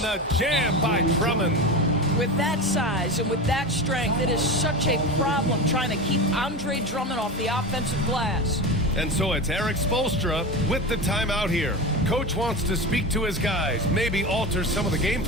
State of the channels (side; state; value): both; normal; correlation 0.24